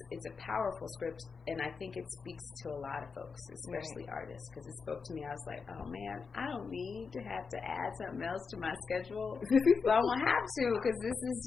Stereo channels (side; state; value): right; quieter; 5.2 dB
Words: a powerful script, and I think it speaks to a lot of folks, especially artists, because it spoke to me. I was like, oh man, I don't need to have to add something else to my schedule, but I won't have to, because this is